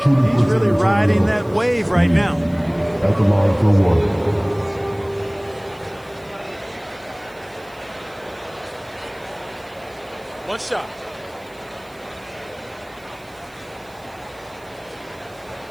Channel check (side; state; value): right; noise; hiss, 28 dB below the sound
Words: he's really riding that wave right now. At the line for 1. One shot.